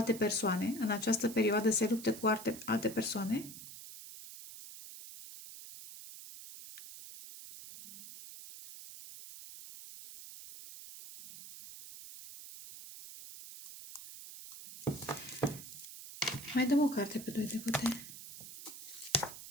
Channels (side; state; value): right; noise; hiss, 13 dB below the sound